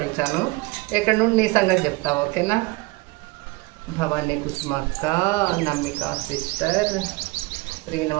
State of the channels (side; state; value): left; quieter; 23.7 dB